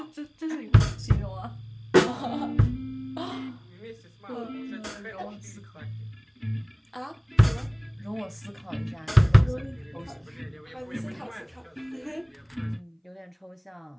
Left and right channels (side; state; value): both; identical; correlation 1.00